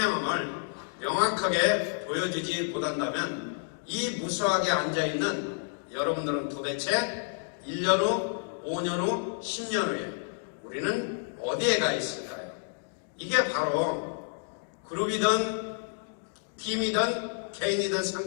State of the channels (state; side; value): silent; right; digital silence